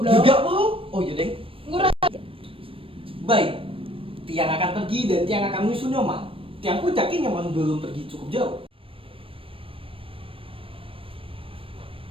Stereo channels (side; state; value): left; late; 0.26 ms